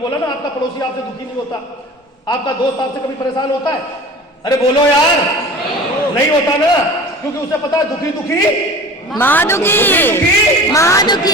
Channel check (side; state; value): both; normal; correlation 0.39